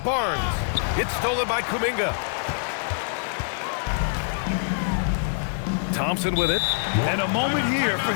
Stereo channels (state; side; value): silent; right; digital silence